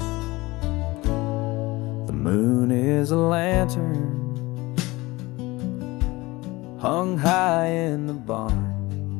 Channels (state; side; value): quieter; right; 21.3 dB